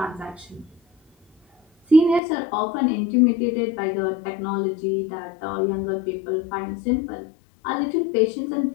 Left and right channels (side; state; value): right; drops out; at 2.2 s